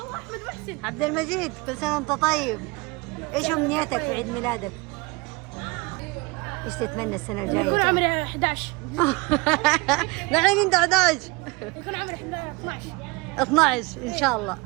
عبد المجيد، كل سنة وانت طيب. ايش امنيتك في عيد ميلادك؟ ايش تتمنى السنة الجاية؟ يكون عمري 11. الحين انت 11. يكون عمري 12. 12 ان شاء الله،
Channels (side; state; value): left; quieter; 25.8 dB